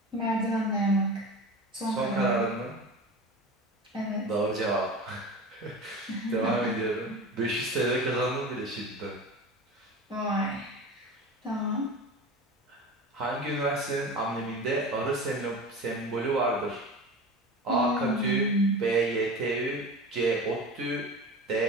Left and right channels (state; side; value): normal; both; correlation 0.32